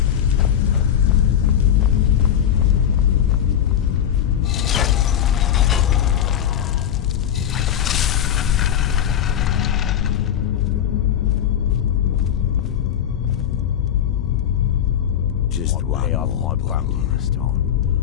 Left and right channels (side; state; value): right; quieter; 9.8 dB